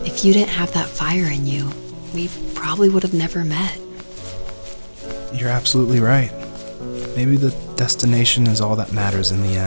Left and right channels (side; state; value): both; inverted; correlation -1.00